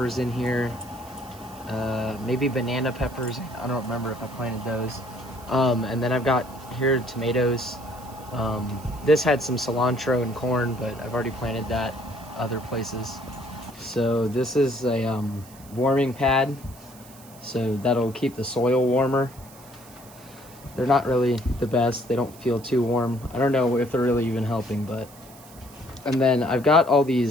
in here. Maybe banana peppers. I don't remember if I planted those. And then I've got here tomatoes. This had some cilantro and corn, but I've already planted that other places. So this is a warming pad, so that'll keep the soil warmer. They're not really the best. They don't feel too warm. I don't know if they're really even helping, but. And then I've got all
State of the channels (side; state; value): right; noise; hiss, 22 dB below the sound